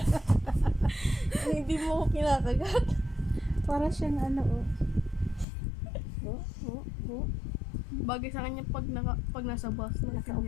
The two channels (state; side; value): drops out; right; at 5.5 s